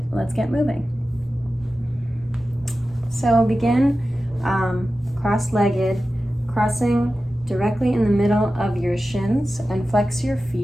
let's get moving. So begin cross-legged, crossing directly in the middle of your shins, and flex your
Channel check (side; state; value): both; normal; correlation 0.94